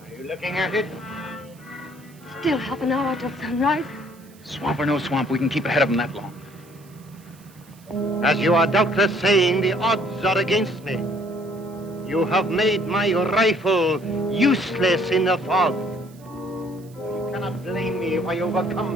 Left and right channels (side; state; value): right; noise; hiss, 27 dB below the sound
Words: Are you looking at it? Still half an hour till sunrise. Swamp or no swamp, we can keep ahead of him that long. As you are doubtless saying, the odds are against me. You have made my rifle useless in the fog. You cannot blame me if I